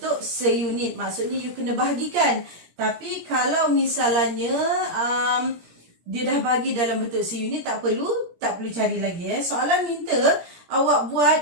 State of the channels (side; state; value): left; late; 17 ms